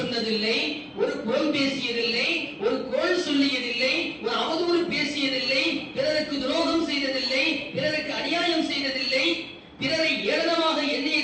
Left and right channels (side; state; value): both; identical; correlation 1.00